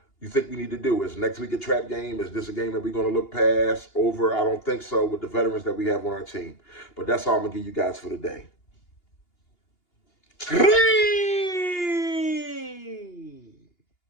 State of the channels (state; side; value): late; right; 2.8 ms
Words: you think we need to do. Is next week a trap game? Is this a game that we're going to look past, over? I don't think so with the veterans that we have on our team. But that's all I'm going to give you guys for today.